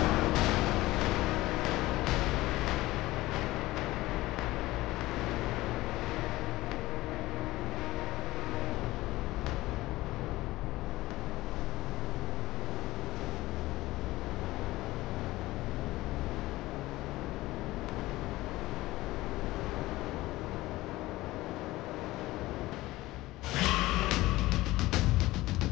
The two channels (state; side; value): quieter; right; 18.1 dB